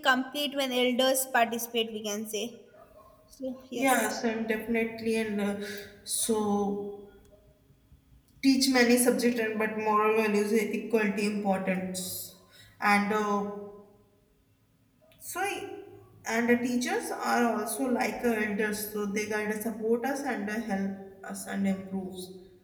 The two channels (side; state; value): both; identical; correlation 1.00